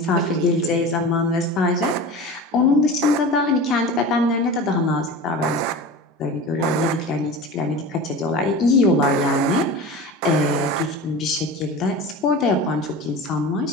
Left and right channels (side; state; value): both; normal; correlation 0.33